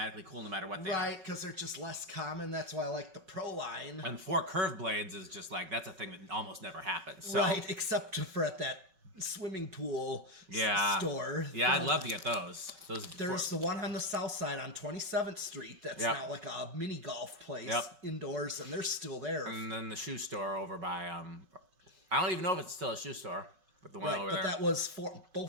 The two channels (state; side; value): late; left; 5.3 ms